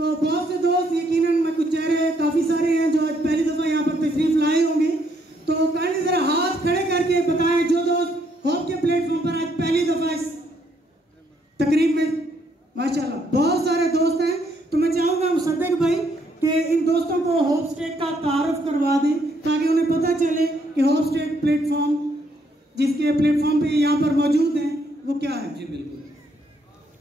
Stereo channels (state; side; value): normal; both; correlation 0.71